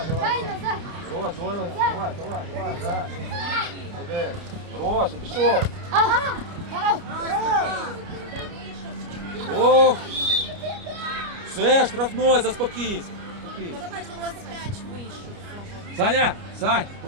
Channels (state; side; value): late; left; 29 ms